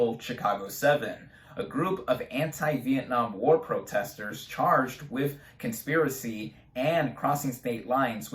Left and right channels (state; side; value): identical; both; correlation 1.00